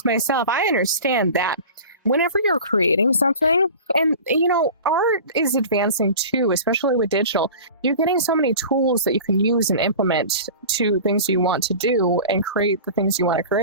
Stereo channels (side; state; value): both; inverted; correlation -0.37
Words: myself, I understand that whenever you're creating something, and art is advancing too, especially with digital, you're getting so many tools that you can use and implement to things you want to do and create the things you want to